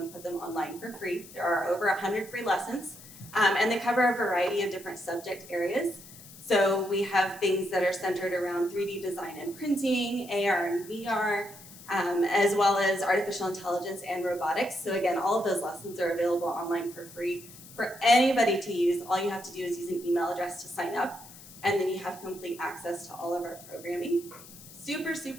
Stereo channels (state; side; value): noise; left; hiss, 18 dB below the sound